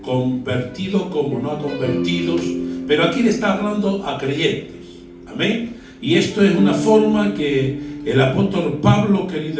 convertidos como no a convertidos, pero aquí le está hablando a creyentes. Amén. Y esto es una forma que el apóstol Pablo,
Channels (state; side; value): identical; both; correlation 1.00